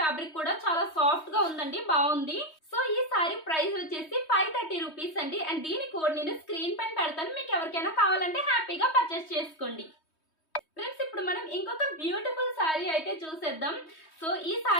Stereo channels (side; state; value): right; late; 3.2 ms